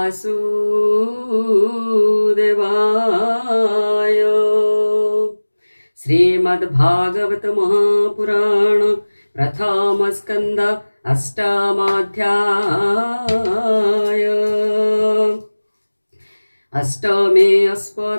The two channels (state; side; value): inverted; both; correlation -1.00